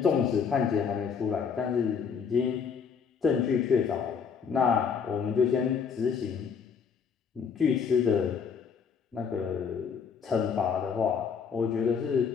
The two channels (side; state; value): right; quieter; 6.4 dB